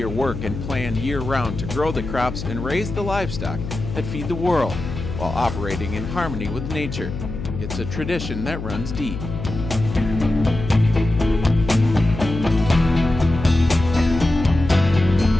work and plan year-round to grow the crops and raise the livestock that feed the world, while operating in harmony with nature. It's a tradition that runs deep.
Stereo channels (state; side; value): noise; left; hum, 7 dB below the sound